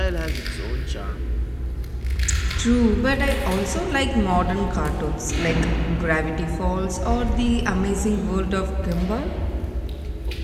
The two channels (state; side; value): identical; both; correlation 1.00